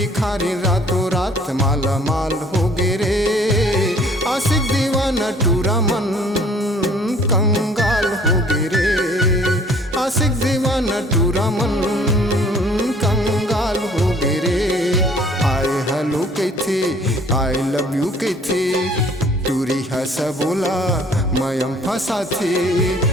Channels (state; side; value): normal; both; correlation 0.55